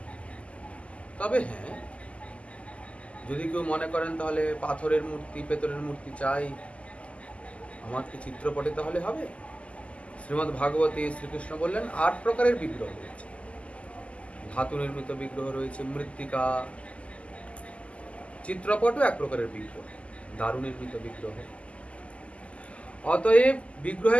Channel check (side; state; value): right; late; 0.061 ms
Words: তবে হ্যাঁ, যদি কেউ মনে করেন তাহলে পাথরের মূর্তি, পেতলের মূর্তি চাই, আমার কি চিত্রপটে তাহলে হবে? শ্রীমদ্ ভাগবতে শ্রীকৃষ্ণ বললেন 8 প্রকারের বিগ্রহ রয়েছে। ধাতু নির্মিত বিগ্রহ রয়েছে, মৃত্তিকা, চিত্রপটও এক প্রকারের বিগ্রহ, দারু নির্মিত বিগ্রহ। অতএব বিগ্রহে